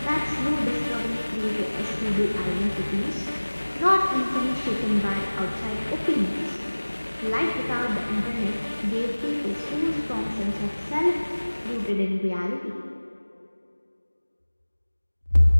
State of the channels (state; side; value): inverted; both; correlation -1.00